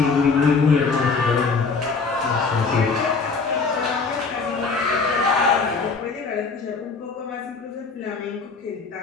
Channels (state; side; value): quieter; right; 4.6 dB